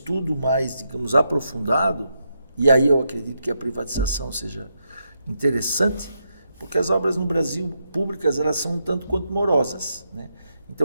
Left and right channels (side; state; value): both; inverted; correlation -0.82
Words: mais, digamos, aprofundado, e aí eu acredito que a privatização seja interessante, porque as obras no Brasil públicas, elas são um tanto quanto morosas, né?